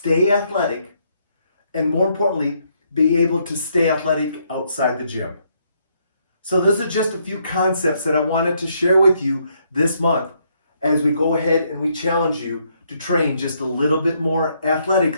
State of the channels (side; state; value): both; inverted; correlation -0.73